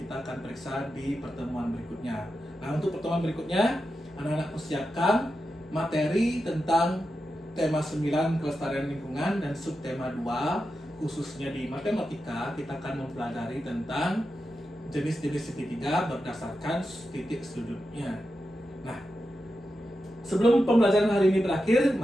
akan periksa di pertemuan berikutnya. Nah, untuk pertemuan berikutnya, anak-anak persiapkan materi tentang tema 9 kelestarian lingkungan dan subtema 2, khususnya di matematika kita akan mempelajari tentang jenis-jenis segitiga berdasarkan titik sudutnya. Nah, sebelum pembelajaran hari ini berakhir,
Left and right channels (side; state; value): both; normal; correlation 0.89